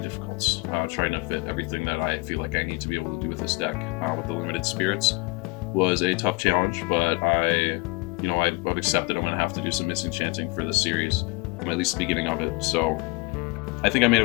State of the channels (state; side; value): quieter; right; 27.7 dB